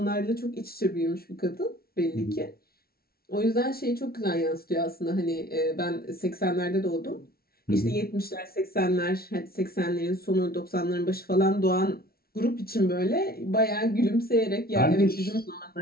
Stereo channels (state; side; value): late; right; 0.44 ms